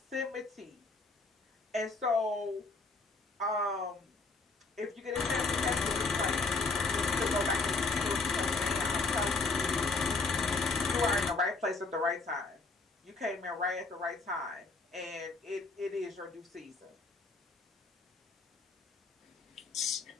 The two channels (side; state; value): right; quieter; 3.8 dB